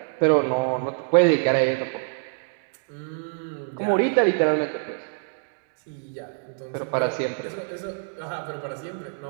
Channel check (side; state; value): left; silent; digital silence